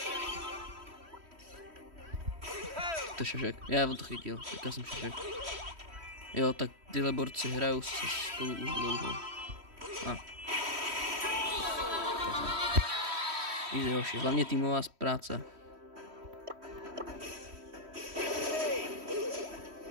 To je šašek. Já on to chytil, teďka jsem šašek. Jo, tak tyhle borci hrajou se spolu už dlouho. Easy hoši, hlavně týmová práce.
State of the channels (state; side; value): late; left; 3.1 ms